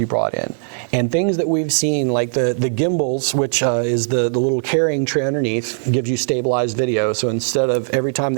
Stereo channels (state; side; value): silent; left; digital silence